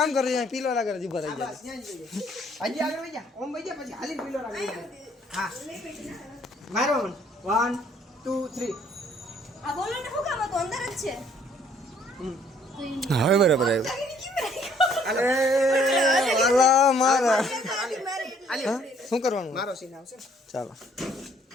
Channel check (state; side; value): normal; both; correlation 0.62